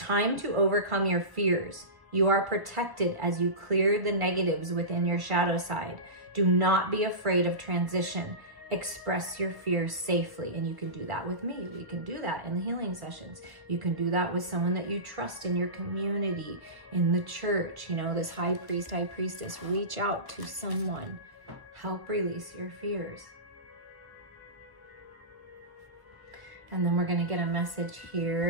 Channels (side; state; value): left; late; 1.2 ms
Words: to overcome your fears. You are protected as you clear the negatives within your shadow side. Do not be afraid of transition. Express your fears safely. And you can do that with me. We can do that in the healing sessions. You can do that with someone that you trust in your community, in the church. You know, this high priest, high priestess. Reach out to someone. Help release your fears. And then we're going to get a message